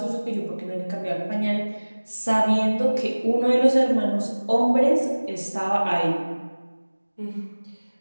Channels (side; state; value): both; inverted; correlation -1.00